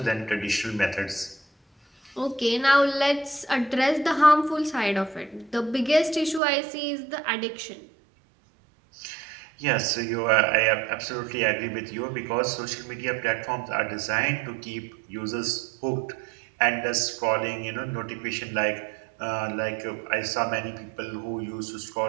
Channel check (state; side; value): drops out; left; at 6.4 s